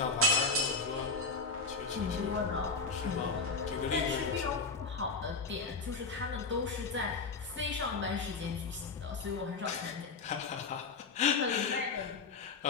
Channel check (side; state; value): right; quieter; 4.2 dB